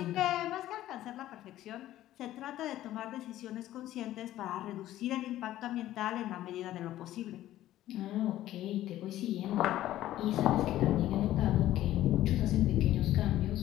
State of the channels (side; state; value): right; quieter; 13.9 dB